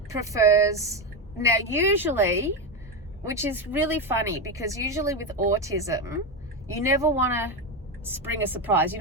prefers, now usually, which is really funny because usually with autism, you never want to spring a surprise. You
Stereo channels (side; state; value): both; normal; correlation 0.13